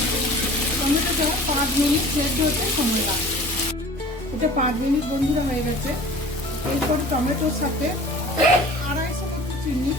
টমেটোটা 5 মিনিট সেদ্ধ হতে সময় লাগবে। এটা 5 মিনিট বন্ধুরা হয়ে গেছে। এরপর টমেটোর সাথে 250 মতো চিনি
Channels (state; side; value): normal; both; correlation 0.44